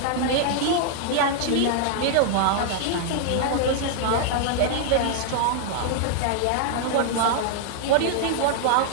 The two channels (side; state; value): both; different; correlation -0.01